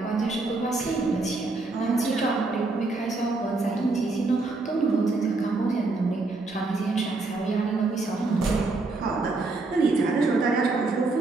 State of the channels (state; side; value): quieter; left; 3.4 dB